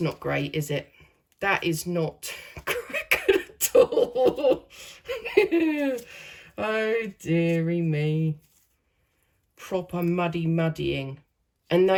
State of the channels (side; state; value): both; identical; correlation 1.00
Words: not great, is it? That is not good at all. Oh, dearie me. Proper muddying. And